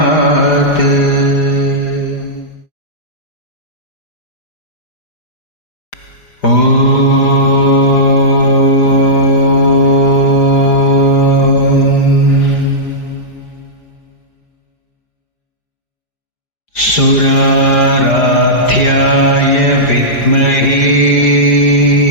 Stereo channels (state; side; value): late; right; 4.9 ms